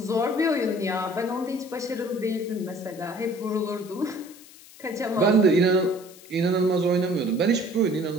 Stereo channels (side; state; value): left; noise; hiss, 21 dB below the sound